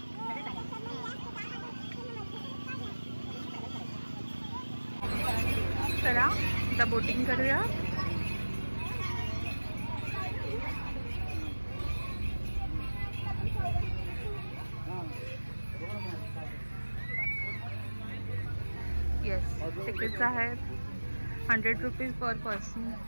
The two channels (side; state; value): both; inverted; correlation -1.00